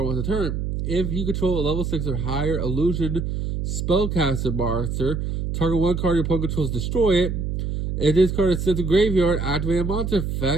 once a turn. If you control a level 6 or higher illusion spellcaster monster, target one card your opponent controls, destroy it. If this card is sent to graveyard, activate a monster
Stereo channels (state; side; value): noise; right; hum, 2 dB below the sound